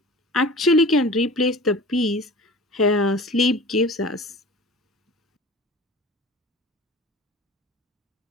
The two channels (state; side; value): normal; both; correlation 0.40